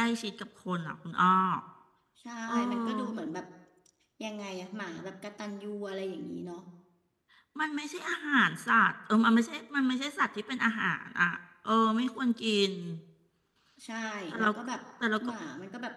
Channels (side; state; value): both; identical; correlation 1.00